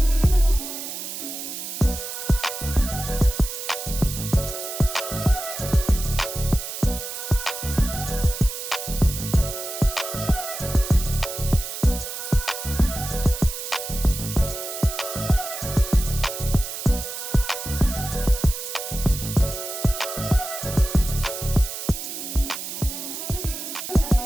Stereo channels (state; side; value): noise; right; hiss, 7 dB below the sound